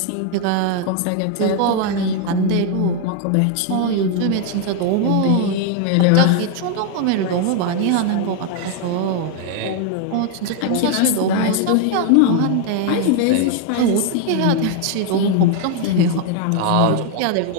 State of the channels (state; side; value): different; both; correlation 0.01